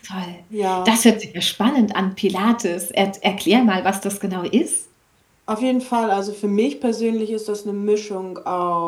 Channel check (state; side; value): identical; both; correlation 1.00